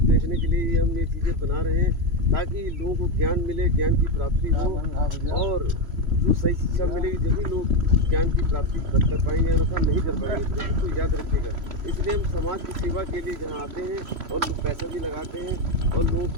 देखने के लिए ये हम ये चीज़ें बना रहे हैं ताकि लोगों को ज्ञान मिले, ज्ञान की प्राप्ति हो, और जो सही शिक्षा मिलेगी जभी लोग ज्ञान की प्राप्ति कर पाएंगे, अन्यथा नहीं कर पाएंगे। तो याद रखिएगा। इसलिए हम समाज की सेवा के लिए जहाँ आते हैं और लोग पैसा भी लगाते हैं और लोगों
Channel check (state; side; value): late; left; 3.0 ms